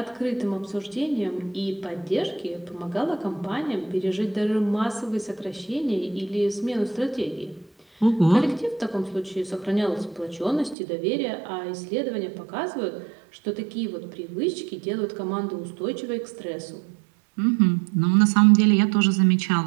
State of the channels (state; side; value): drops out; left; at 10.8 s